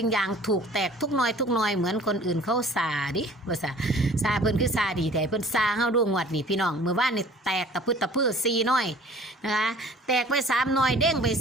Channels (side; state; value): both; normal; correlation 0.49